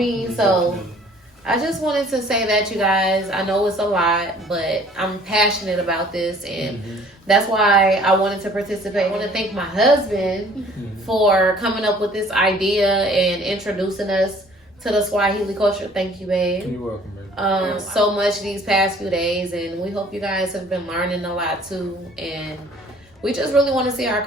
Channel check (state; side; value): normal; both; correlation 0.54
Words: So I just wanted to say that, you guys. I know it's a lot, but I'm passionate about this, and that's why I wanted to participate. I want to thank my husband for coming up with this idea and introducing us to the Swahili culture. Thank you, babe. You're welcome, babe. So much these past few days, and we hope you guys have been learning a lot too. And we just really want to see our